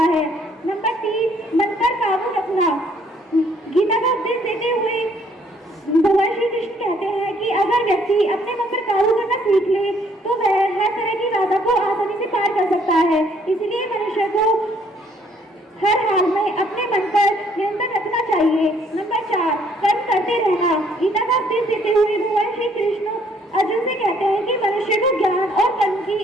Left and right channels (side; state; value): both; normal; correlation 0.64